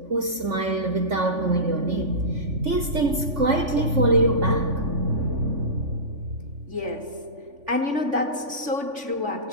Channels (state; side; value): late; left; 3.5 ms